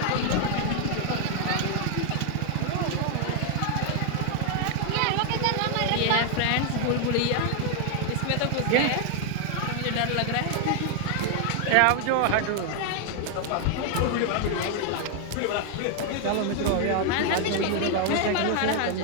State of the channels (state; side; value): different; both; correlation 0.00